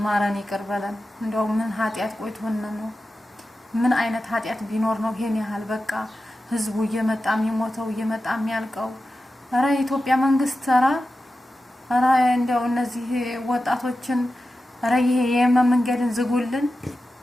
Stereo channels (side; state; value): both; normal; correlation 0.92